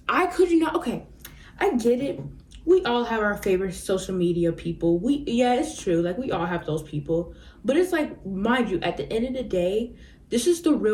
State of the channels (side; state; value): both; identical; correlation 1.00